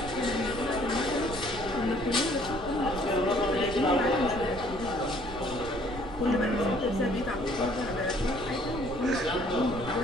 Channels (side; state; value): right; noise; rumble, 12 dB below the sound